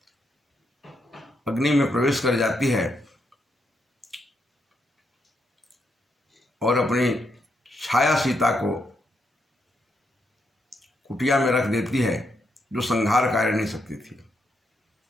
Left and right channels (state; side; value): normal; both; correlation 0.80